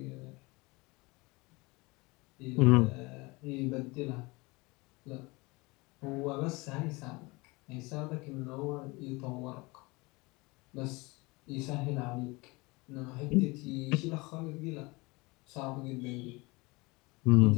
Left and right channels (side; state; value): right; quieter; 24.7 dB